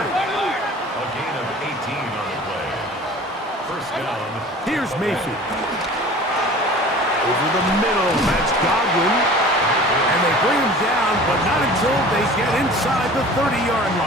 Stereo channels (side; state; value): both; normal; correlation 0.43